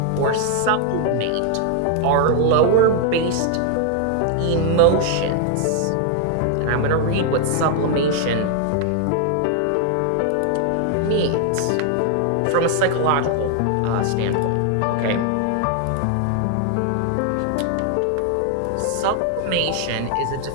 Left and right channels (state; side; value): different; both; correlation 0.00